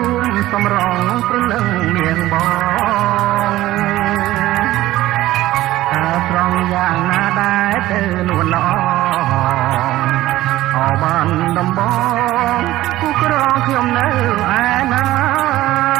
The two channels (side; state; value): left; quieter; 15.9 dB